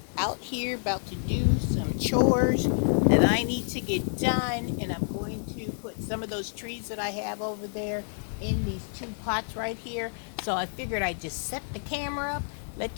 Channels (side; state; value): right; silent; digital silence